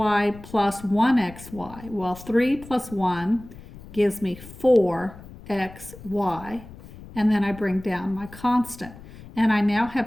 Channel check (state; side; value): noise; left; rumble, 17 dB below the sound